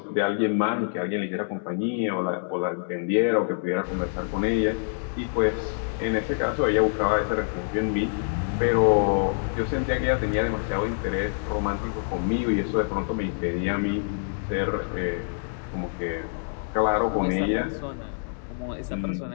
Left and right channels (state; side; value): silent; right; digital silence